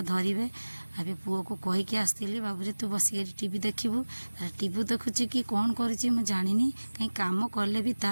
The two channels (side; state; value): both; inverted; correlation -1.00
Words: अबे पुओ को कहीकि आसती, बाबू तू बसिक टीवी देखबू। टीवी देखुची कि कौन करुची मु जानिनी। कहीं काम कले भी